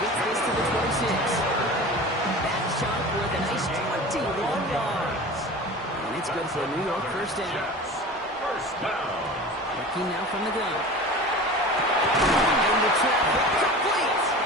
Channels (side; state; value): both; normal; correlation 0.36